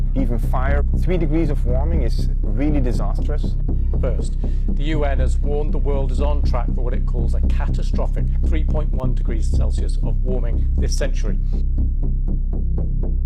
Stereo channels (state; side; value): identical; both; correlation 1.00